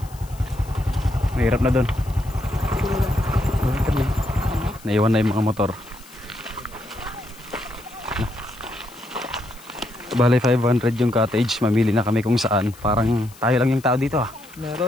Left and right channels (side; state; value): left; noise; hiss, 23 dB below the sound